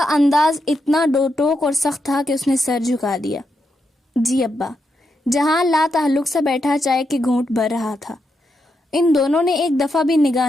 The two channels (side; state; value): both; normal; correlation 0.83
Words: انداز اتنا ڈوٹوک اور سخت تھا کہ اس نے سر جھکا دیا۔ جی ابا۔ جہان لا تعلق سے بیٹھا چائے کے گھونٹ بھر رہا تھا۔ ان دونوں نے ایک دفعہ بھی